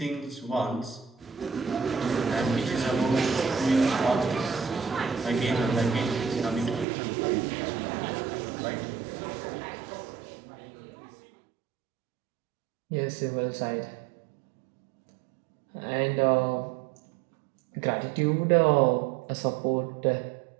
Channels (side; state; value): left; drops out; at 6.9 s